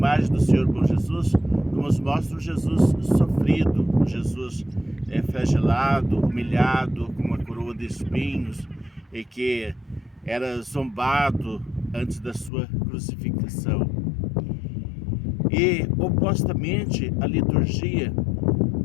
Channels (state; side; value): drops out; right; at 12.5 s